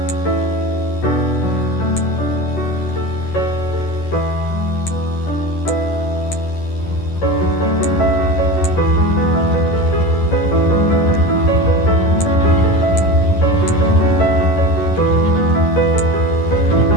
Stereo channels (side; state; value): right; late; 11 ms